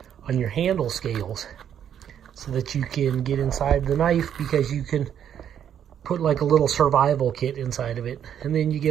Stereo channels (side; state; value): left; quieter; 9.3 dB